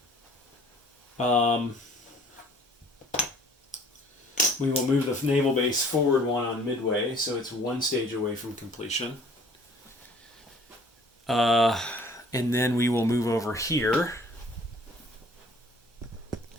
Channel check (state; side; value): normal; both; correlation 0.54